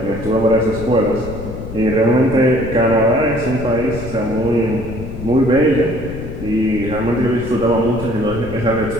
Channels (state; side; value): noise; left; rumble, 10 dB below the sound